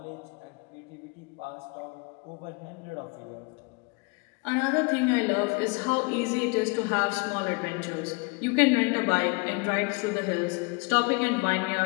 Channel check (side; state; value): right; quieter; 30.5 dB